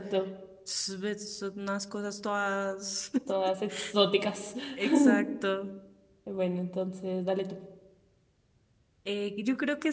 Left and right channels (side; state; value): both; identical; correlation 1.00